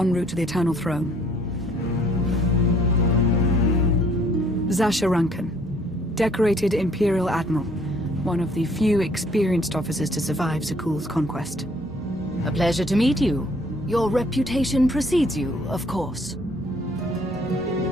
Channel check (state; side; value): normal; both; correlation 0.61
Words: route to the Eternal Throne. Zasha Rankin, decorated Imperial Admiral. One of the few experienced officers to survive Zakuul's conquest. A pleasure to meet you. Your reputation precedes you, of course.